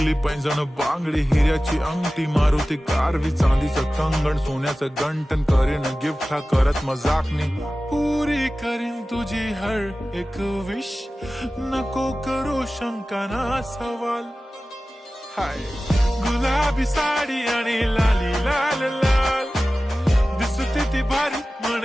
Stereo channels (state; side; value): normal; both; correlation 0.96